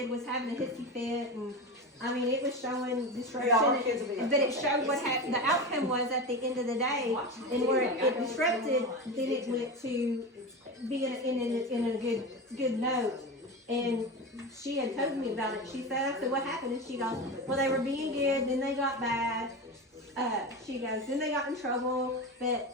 was having a hissy fit, and it was showing disruption. Yeah, our kids will be But it showed what happened. The outcome was at the end of the day, and where it disrupted, then it went to being in a good note. And she had told me about it. She said, I said, what happened? And she goes, well, they were being good, then they got bad. She goes, then they got in trouble, but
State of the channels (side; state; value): both; normal; correlation 0.23